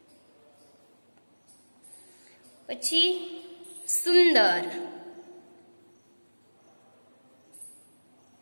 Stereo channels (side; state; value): both; inverted; correlation -1.00